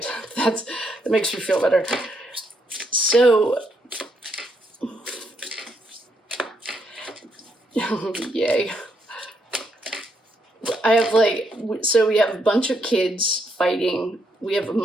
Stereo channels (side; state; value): both; normal; correlation 0.76